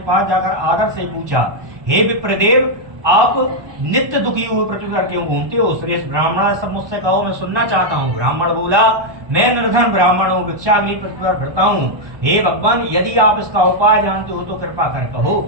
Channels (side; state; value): left; late; 1.2 ms